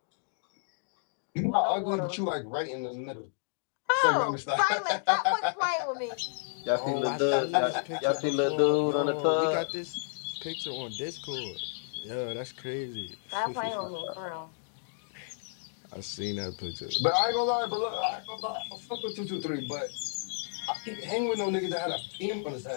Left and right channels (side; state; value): right; silent; digital silence